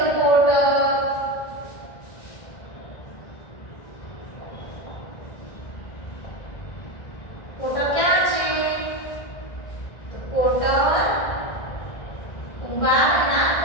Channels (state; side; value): late; right; 1.6 ms